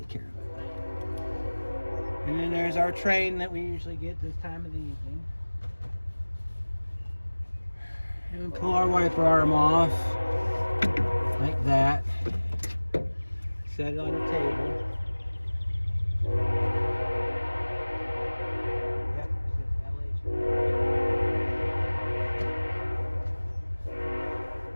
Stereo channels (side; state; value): both; inverted; correlation -1.00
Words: care of it. And then there's our train that we usually get this time of the evening. And we pull our wiper arm off like that. Set it on the table.